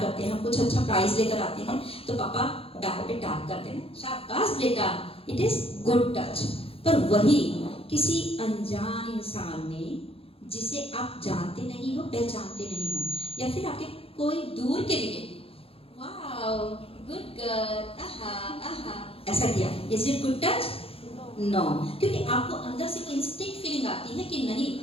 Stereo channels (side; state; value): right; late; 0.27 ms